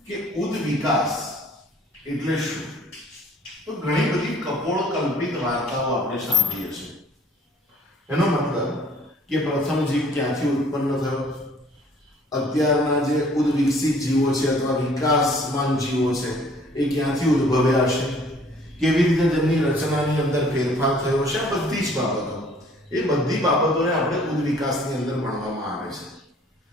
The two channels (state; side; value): normal; both; correlation 0.56